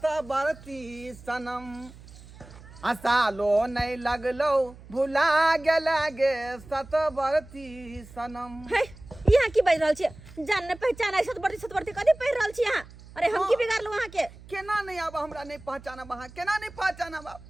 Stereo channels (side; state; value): right; noise; hum, 19 dB below the sound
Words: सनम, सालो नहीं लगलो भुला गेला गे सतबरती सनम। है यहाँ की बाज रहल छी? जान न पहचान है सतबरती कथी पढ़ रहल छी यहाँ? अरे हम की बिगाड़लू वहाँ के? केना नहीं आबा हमरा नहीं पहचाना वहाँ, केना नहीं पहचाना बा?